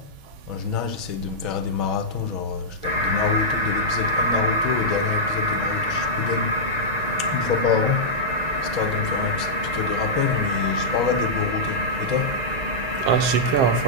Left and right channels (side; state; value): left; late; 7.6 ms